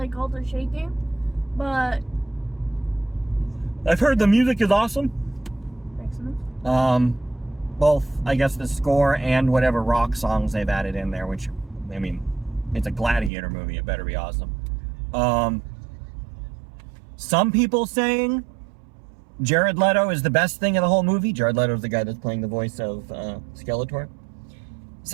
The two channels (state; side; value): drops out; left; at 13.3 s